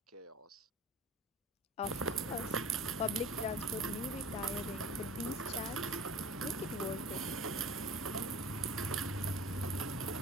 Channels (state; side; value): normal; both; correlation 0.39